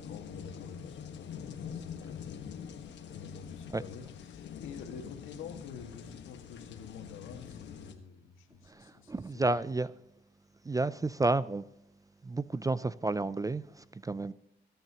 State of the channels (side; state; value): both; normal; correlation 0.75